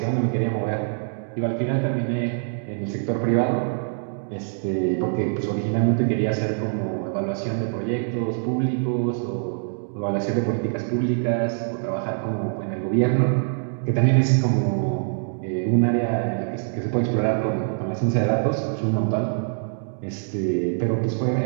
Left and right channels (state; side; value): silent; left; digital silence